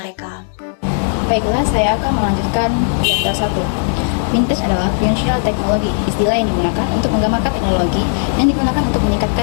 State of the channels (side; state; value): right; silent; digital silence